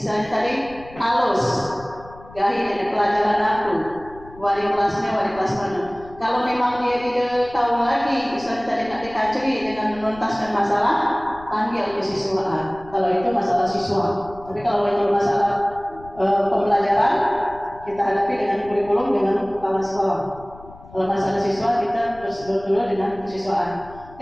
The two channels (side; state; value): left; noise; rumble, 20 dB below the sound